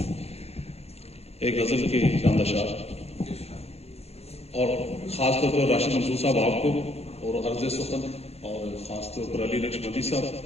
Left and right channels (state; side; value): late; right; 0.30 ms